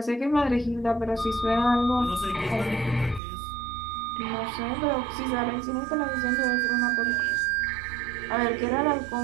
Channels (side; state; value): left; drops out; at 3.2 s